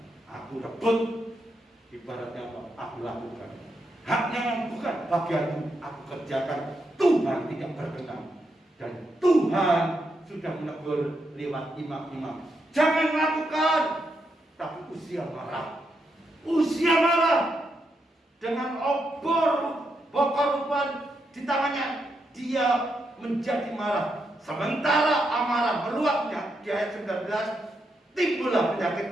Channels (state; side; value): normal; both; correlation 0.82